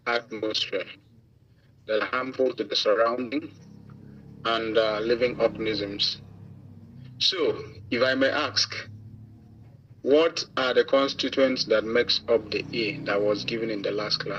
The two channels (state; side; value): identical; both; correlation 1.00